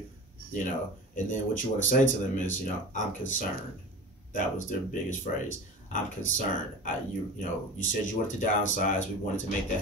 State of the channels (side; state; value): both; normal; correlation 0.34